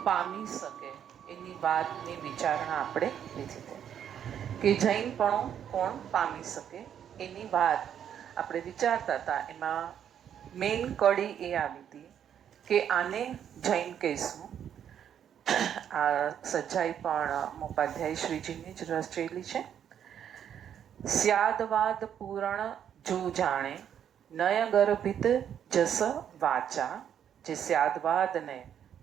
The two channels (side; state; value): left; quieter; 9.1 dB